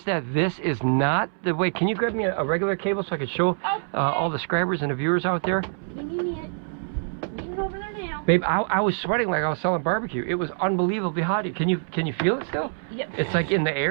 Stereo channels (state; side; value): silent; left; 62 dB below the other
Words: that this is not the way. Can you grab me a regular cable so I can show all the scrabbers and the viewers out there? Give me it. Leave it over there now. Babe, I was sweating like I was selling barbecue. It was unbelievably hot. Can you feel it still? Yep. It's like in the